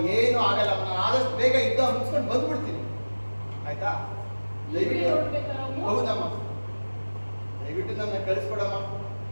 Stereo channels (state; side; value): inverted; both; correlation -1.00